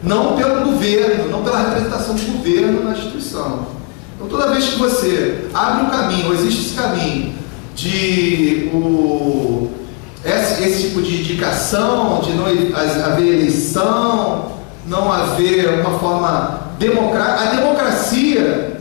não pelo governo, não pela representação do governo na instituição. Então, toda vez que você abre um caminho, ou existe esse caminho esse tipo de indicação, de não haver eleição, não haver uma forma democrática. A democracia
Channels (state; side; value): quieter; right; 32.9 dB